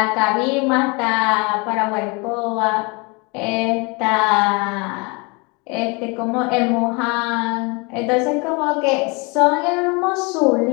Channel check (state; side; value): quieter; right; 29.5 dB